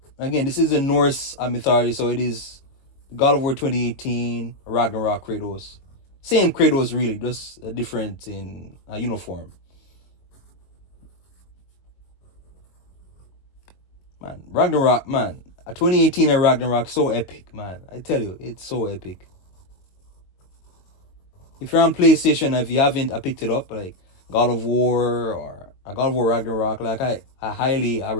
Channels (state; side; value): late; right; 22 ms